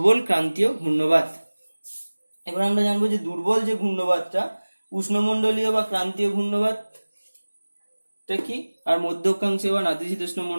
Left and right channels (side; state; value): both; inverted; correlation -1.00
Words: ক্রান্তীয় ঘূর্ণবাত। এবার আমরা জানবো যে দুর্বল যে ঘূর্ণবাতটা, উষ্ণমণ্ডলীয় বা ক্রান্তীয় ঘূর্ণবাতটা কি, আর মধ্য অক্ষাংশীয় বা নাতিশীতোষ্ণ